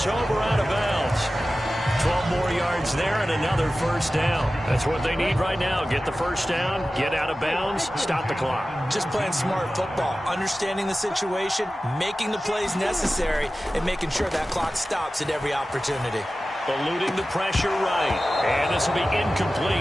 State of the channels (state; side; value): normal; both; correlation 0.95